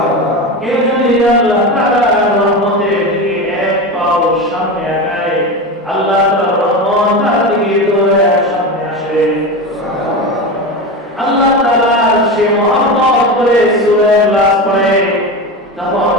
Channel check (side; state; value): both; normal; correlation 0.22